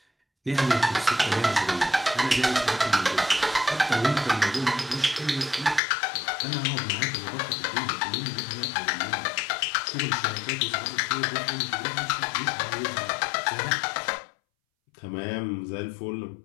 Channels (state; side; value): drops out; right; at 5.8 s